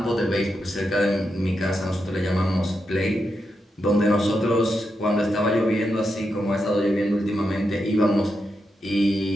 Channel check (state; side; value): normal; both; correlation 0.85